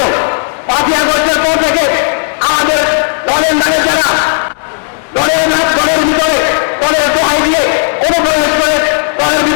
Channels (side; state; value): right; silent; digital silence